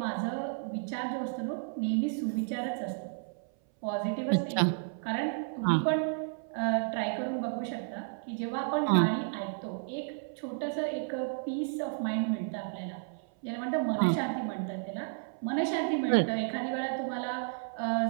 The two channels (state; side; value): silent; left; 56 dB below the other